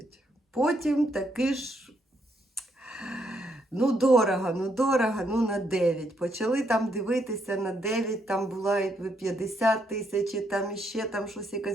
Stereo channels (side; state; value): both; normal; correlation 0.75